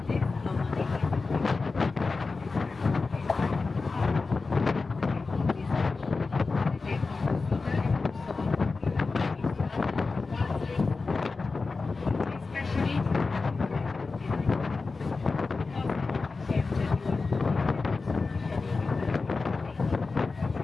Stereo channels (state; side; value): quieter; right; 4.1 dB